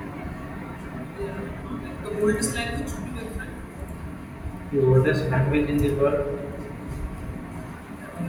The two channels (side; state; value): both; identical; correlation 1.00